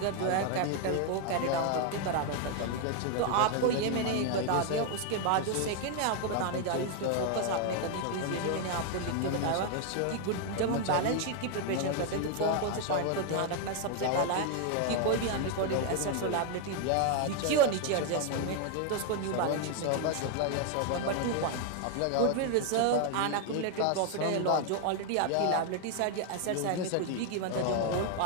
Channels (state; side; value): different; both; correlation 0.01